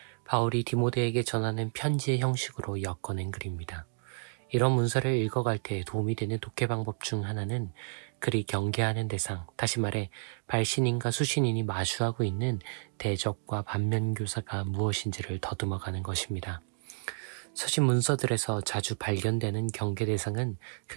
바울이 디모데에게 전하는 편지의 형식으로 엮어낸 글입니다. 이런 문서를 읽어갈 때 도움이 되는 독해 방법 중 하나는 글이 경계하는 대상, 다시 말해 발신인과 수신인이 마주하고 있는 대적과 반면교사가 무엇인지를 더듬어가는 것입니다. 서신 문서들에서 자주 발견되는 경계 대상은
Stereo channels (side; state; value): left; silent; digital silence